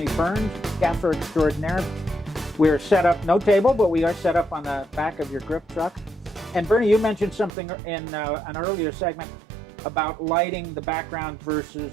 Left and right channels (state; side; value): drops out; left; at 7.5 s